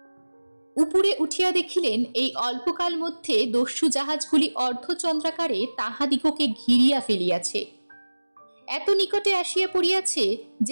উপরে উঠিয়া দেখিলেন এই অল্পকাল মধ্যে দস্যু জাহাজগুলি অর্ধচন্দ্রাকারে তাহাদিগকে ঘিরিয়া ফেলিয়াছে। এত নিকটে আসিয়া পড়িয়াছে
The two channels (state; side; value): inverted; both; correlation -1.00